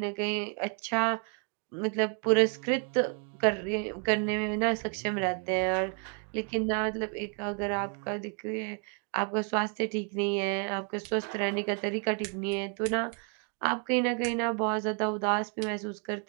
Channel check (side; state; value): left; quieter; 38.6 dB